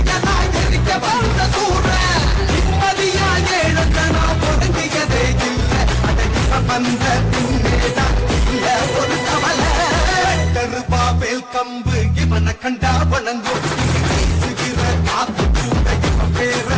எரிக்க வந்த சூர நிம்மதியா ஏழத்தனா ஒடுங்கியதே இல்லை அடக்கிய வந்த பின்னேதான் இல்ல ஒரு கவலை கருப்பா வேல் கம்பு இவனை கண்டா வணங்கும் வீசுகிற காத்து கூட இவன் பேர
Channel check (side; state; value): both; identical; correlation 1.00